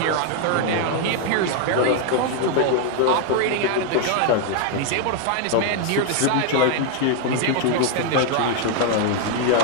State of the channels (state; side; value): different; both; correlation 0.00